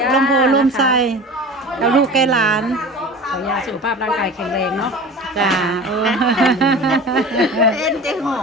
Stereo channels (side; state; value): both; normal; correlation 0.36